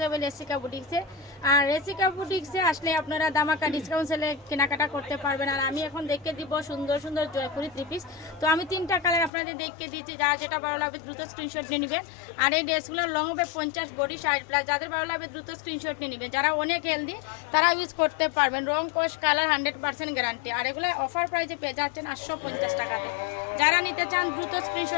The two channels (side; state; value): right; drops out; at 9.3 s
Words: হবে রেসিকা বুটিক্সে। আর রেসিকা বুটিক্সে আসলে আপনারা দামাকা ডিসকাউন্ট সেলে কেনাকাটা করতে পারবেন। আর আমি এখন দেখে দিব সুন্দর সুন্দর জয়পুরি থ্রি পিস। তো আমি 3টা কালার আপনাদের দেখে দিচ্ছি, যারা যেটা ভালো লাগবে দ্রুত স্ক্রিনশট নিয়ে নেবেন। আর এই ড্রেসগুলো লং হবে 50, বডি 60+। যাদের ভালো লাগবে দ্রুত স্ক্রিনশট নিয়ে নেবেন। যারা অনেক হেলদি তারা ইউজ করতে পারবেন। রং, কস, কালার 100% গ্যারান্টি। আর এগুলো অফার প্রাইসে পেয়ে যাচ্ছেন 850 টাকাতে। যারা নিতে চান দ্রুত